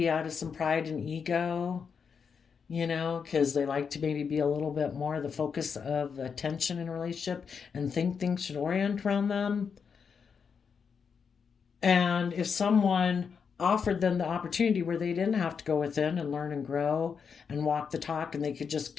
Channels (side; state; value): right; quieter; 6.2 dB